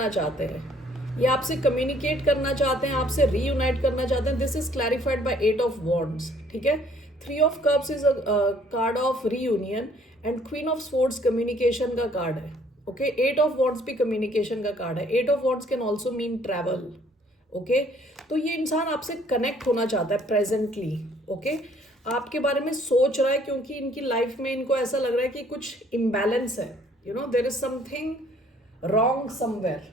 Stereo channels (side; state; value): both; normal; correlation 0.61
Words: चाहते हैं, ये आपसे कम्युनिकेट करना चाहते हैं, आपसे रीयूनाइट करना चाहते हैं। This is clarified by 8 of wands, ठीक है। Three of cups is a card of reunion and queen of swords communication का कार्ड है. ओके, एट ऑफ वॉन्ड्स भी कम्युनिकेशन का कार्ड है. Eight of wands can also mean travel. Okay, तो ये इंसान आपसे कनेक्ट होना चाहता है प्रेजेंटली. ओके, आपके बारे में सोच रहा है क्योंकि इनकी लाइफ में इनको ऐसा लग रहा है कि कुछ इम्बैलेंस है. You know, there is something wrong somewhere.